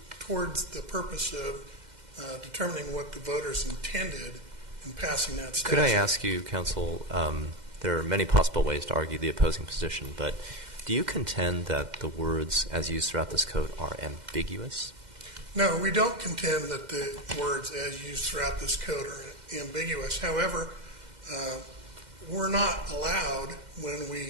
towards the purpose of determining what the voters intended in passing that statute. Could I ask you, counsel, there are many possible ways to argue the opposing position, but do you contend that the words as used throughout this code are ambiguous? No, we don't contend that the words as used throughout this code are ambiguous. However, we're not allowed, when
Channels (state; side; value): late; left; 2.1 ms